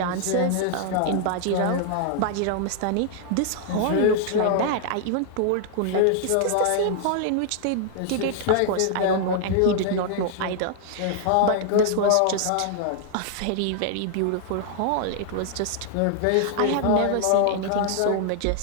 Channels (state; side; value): different; both; correlation 0.00